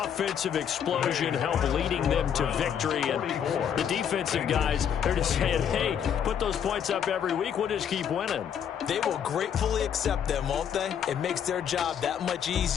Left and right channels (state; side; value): quieter; right; 8.4 dB